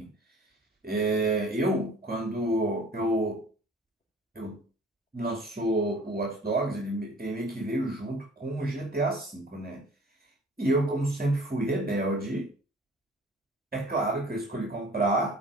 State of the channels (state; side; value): normal; both; correlation 0.49